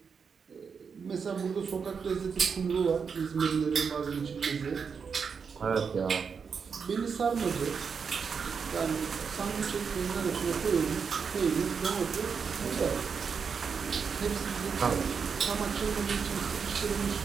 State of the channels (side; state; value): left; quieter; 6.0 dB